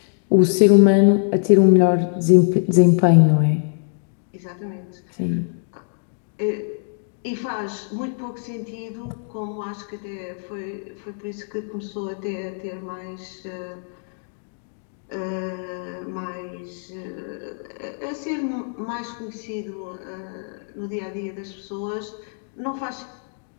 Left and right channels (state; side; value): silent; right; digital silence